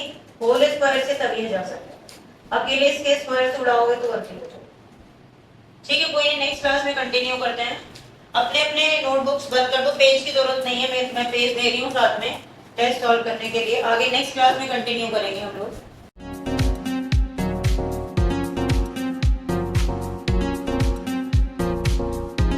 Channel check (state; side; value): identical; both; correlation 1.00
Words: होल स्क्वायर से, तभी जा सकता। अकेले इसके स्क्वायर से उड़ाओगे तो गलती हो जाएगी। ठीक है, कोई नहीं, नेक्स्ट क्लास में कंटिन्यू करते हैं। अपने अपने नोटबुक्स बंद कर दो, पेज की जरूरत नहीं है, मैं पेज दे रही हूँ साथ में टेस्ट सॉल्व करने के लिए। आगे नेक्स्ट क्लास में कंटिन्यू करेंगे हम लोग।